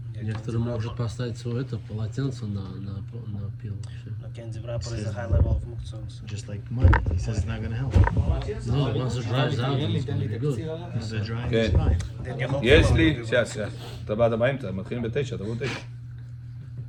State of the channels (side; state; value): both; identical; correlation 1.00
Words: Некоторые могут поставить свое это полотенце на пил. Всё. A candy wrapper is a high level of muktzah. Just like money. He says it's not going to help. No, once it dries out, it's gonna be good. If the drying Okay. is fine. Then you hope יש for לי, it. שנייה, אתה באת באמצע, מתחילים ב9, תבואו 9.